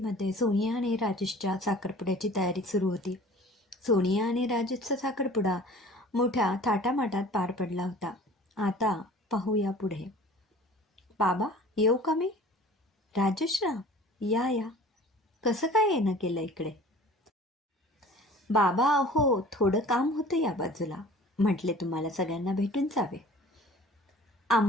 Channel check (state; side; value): normal; both; correlation 0.46